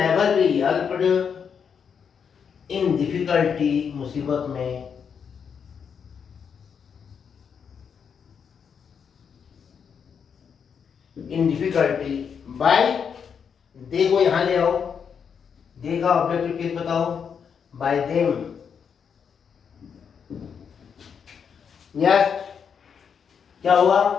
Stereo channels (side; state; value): right; quieter; 6.9 dB